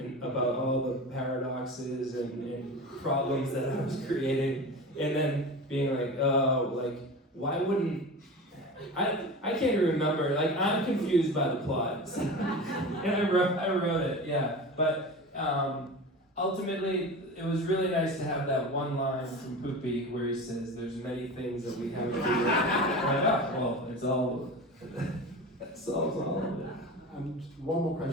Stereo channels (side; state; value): both; normal; correlation 0.31